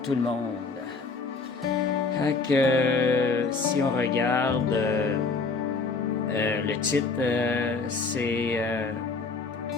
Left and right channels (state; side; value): quieter; right; 4.3 dB